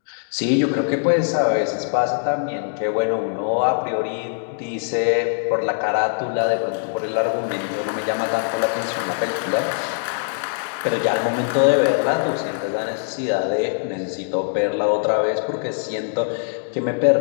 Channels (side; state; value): right; silent; digital silence